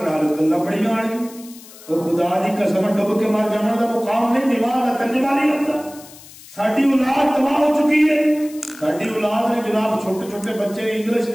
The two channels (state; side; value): noise; left; hiss, 20 dB below the sound